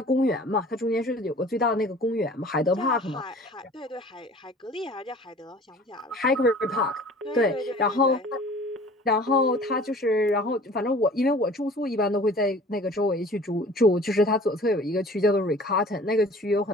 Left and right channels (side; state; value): both; normal; correlation 0.47